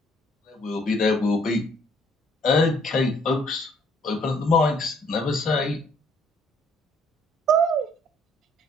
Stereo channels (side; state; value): both; normal; correlation 0.63